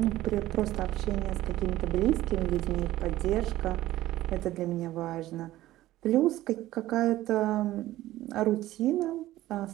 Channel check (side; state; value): left; quieter; 15.5 dB